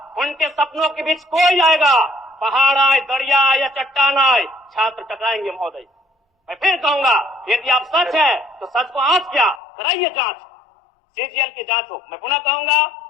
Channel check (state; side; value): drops out; right; at 9.6 s